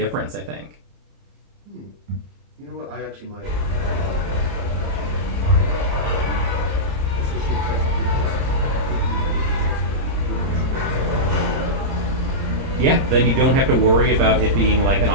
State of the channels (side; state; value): left; late; 30 ms